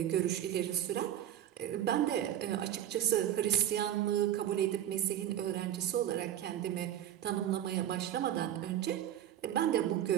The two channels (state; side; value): quieter; left; 11.3 dB